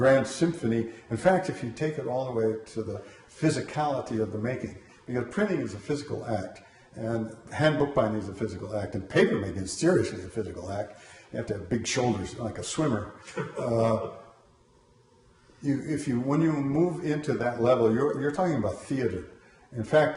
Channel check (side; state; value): both; identical; correlation 1.00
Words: symphony. In fact, if you take it all the way to the physicality of the making, because printing is a physical act, and hand bookbinding is a physical act, and paper making is seriously a physical act. You have to have big shoulders like a swimmer. When you move into that level, you're talking about theater. In